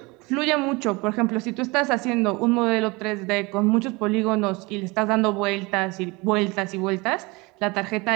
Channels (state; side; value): quieter; left; 25.2 dB